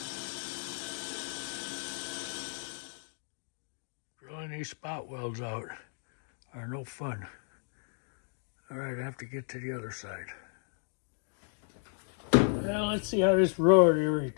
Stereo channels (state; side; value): silent; right; 55 dB below the other